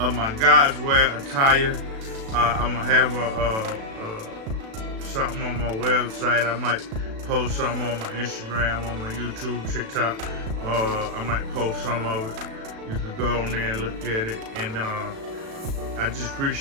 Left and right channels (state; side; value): late; left; 36 ms